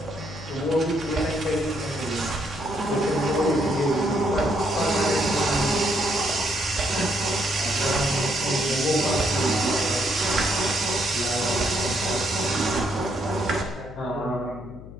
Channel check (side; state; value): left; noise; hum, 15 dB below the sound